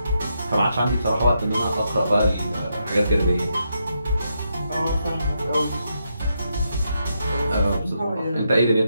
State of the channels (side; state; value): both; inverted; correlation -0.81